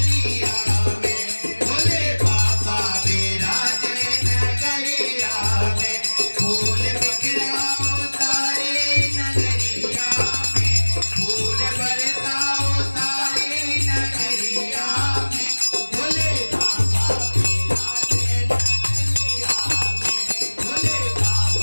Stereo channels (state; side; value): inverted; both; correlation -1.00